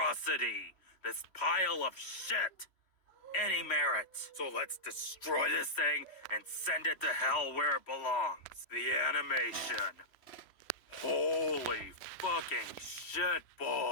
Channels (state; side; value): late; right; 3.1 ms